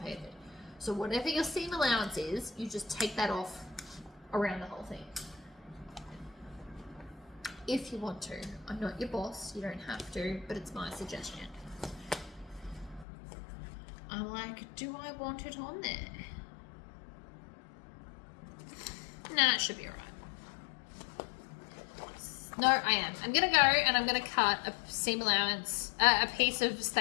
So whatever your seam allowance is, you just take that off around the whole thing. If you want to. I'm not your boss, you don't have to, but it's my suggestion. I'm like, do I want it on there? Nah, it should be alright. No, I am. I'm gonna go and I'm gonna cut a seam allowance, a piece of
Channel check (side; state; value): right; drops out; at 13.1 s